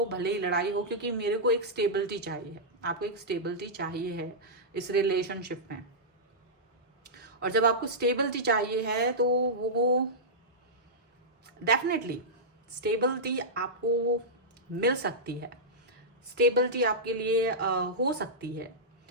भले ही लड़ाई हो, क्योंकि मेरे को एक स्टेबिलिटी चाहिए। आपको एक स्टेबिलिटी चाहिए है इस रिलेशनशिप में, और जब आपको स्टेबिलिटी चाहिए है तो वो डेफिनेटली स्टेबिलिटी आपको मिल सकती है, स्टेबिलिटी आपके लिए हो सकती है,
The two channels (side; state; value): both; normal; correlation -0.12